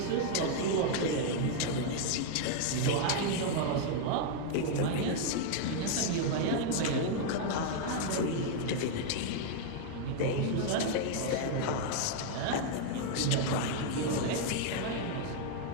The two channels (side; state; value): both; different; correlation 0.00